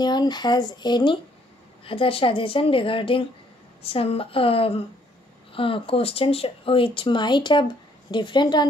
has any other suggestion regarding some questions which might have different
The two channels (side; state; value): both; normal; correlation 0.66